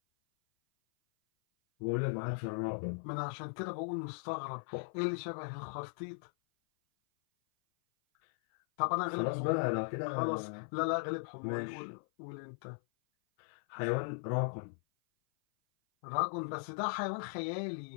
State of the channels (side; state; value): right; silent; 52 dB below the other